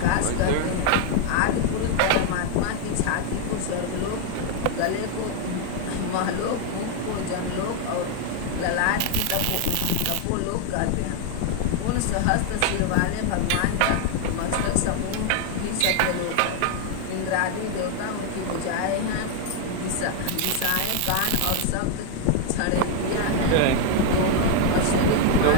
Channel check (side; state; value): both; different; correlation 0.00